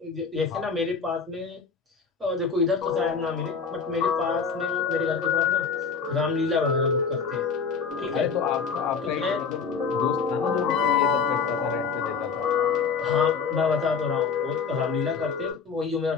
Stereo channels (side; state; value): right; quieter; 5.7 dB